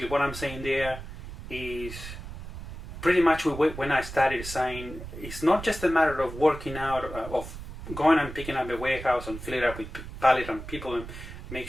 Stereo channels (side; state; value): right; noise; rumble, 11 dB below the sound